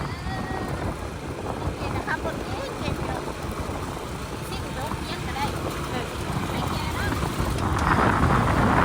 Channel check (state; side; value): identical; both; correlation 1.00